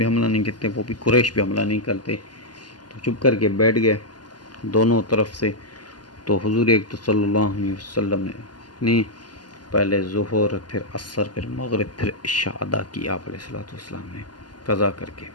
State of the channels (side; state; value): right; late; 0.70 ms